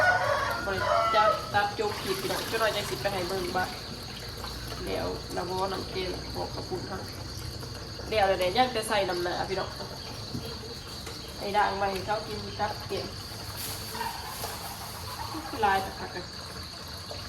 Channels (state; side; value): identical; both; correlation 1.00